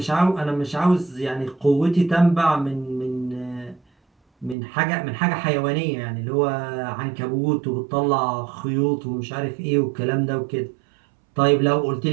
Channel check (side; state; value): left; drops out; at 4.5 s